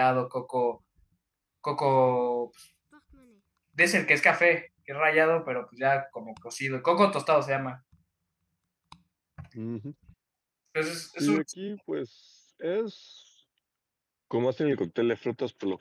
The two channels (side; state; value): both; identical; correlation 1.00